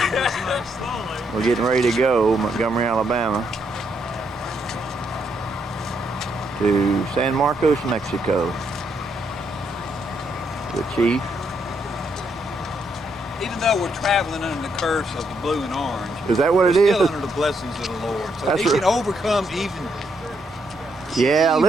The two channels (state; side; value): normal; both; correlation 0.76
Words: We're getting ready to go, Montgomery, Alabama, to San Marcos, Mexico. The chief. Even though we're traveling under the curse of the blue and orange, is that what it we're is? still under the blessings of the Lord. So That's he right. can overcome even. Yeah,